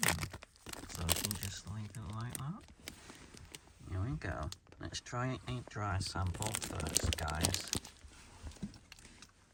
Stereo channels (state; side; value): identical; both; correlation 1.00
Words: So we can just leave it like that. Here we go. Let's try a dry sample first, guys.